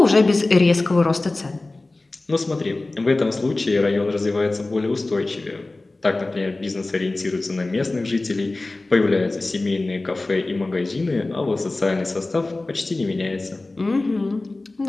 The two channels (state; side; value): quieter; right; 3.0 dB